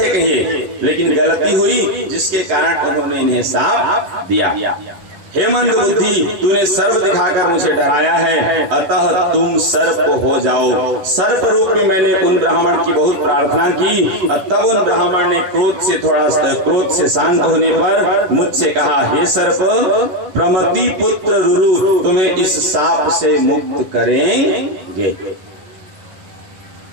कहिए, लेकिन गलती हुई जिसके कारण उन्होंने इन्हें साप दिया। हे मंद बुद्धि, तूने सर्प दिखाकर मुझे डराया है, अतः तुम सर्प हो जाओ। सर्प रूप में मैंने उन ब्राह्मण की बहुत प्रार्थना की। तब उन ब्राह्मण ने क्रोध से शांत होने पर मुझसे कहा, हे सर्प, प्रमति पुत्र रुरु तुम्हें इस साप से मुक्त करेंगे।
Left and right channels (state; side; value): late; left; 11 ms